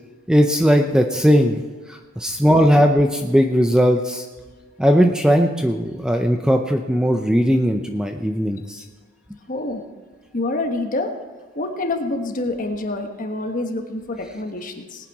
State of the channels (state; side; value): normal; both; correlation 0.84